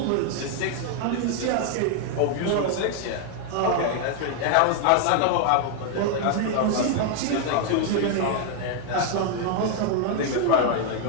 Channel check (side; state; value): both; different; correlation 0.00